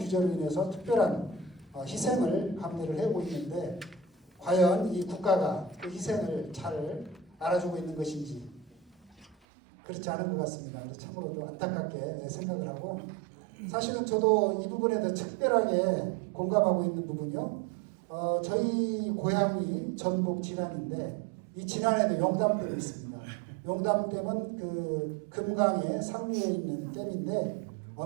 인해서 특별한 희생을 감내를 해오고 있는데 과연 이 국가가 그 희생을 잘 알아주고 있는 것인지 그렇지 않은 것 같습니다. 그래서 참으로 좀 안타깝게 생각을 하고 사실은 저도 이 부분에 대해 특별하게 공감하고 있는 부분이요. 저희 고향이 전북 진안인데 이 진안에도 용담댐이 있습니다. 용담댐은 그 금강의 상류에 있는 댐인데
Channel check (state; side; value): drops out; left; at 9.3 s